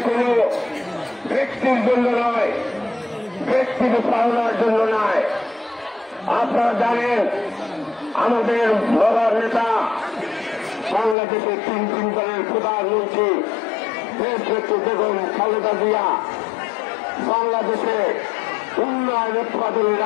কোন ব্যক্তির জন্য নয়, ব্যক্তির পাওনার জন্য নয়। আপনারা জানেন আমাদের বড় নেতা বাংলাদেশের 3 দলের প্রধানমন্ত্রী দেশনেত্রী বেগম খালেদা জিয়া বাংলাদেশে উন্নয়ন উৎপাদনে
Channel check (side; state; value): right; drops out; at 11.2 s